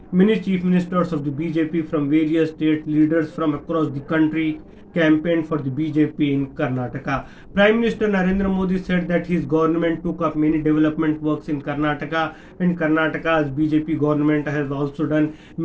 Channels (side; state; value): both; identical; correlation 1.00